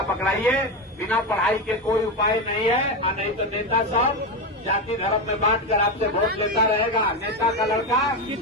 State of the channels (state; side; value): normal; both; correlation 0.14